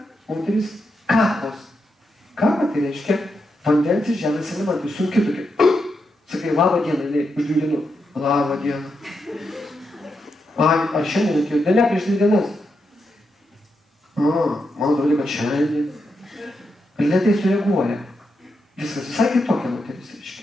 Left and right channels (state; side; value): normal; both; correlation 0.84